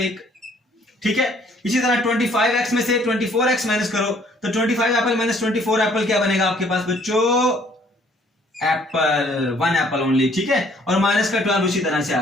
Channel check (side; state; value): both; normal; correlation 0.61